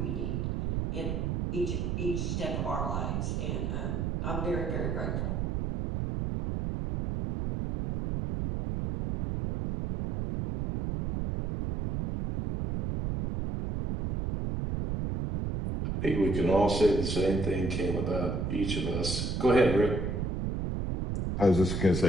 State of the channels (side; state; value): right; noise; rumble, 1 dB below the sound